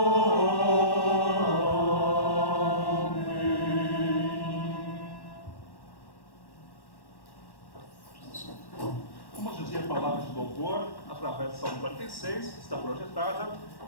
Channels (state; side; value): late; right; 1.1 ms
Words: Vamos dizer palavras de louvor através do Salmo 46, que está projetada,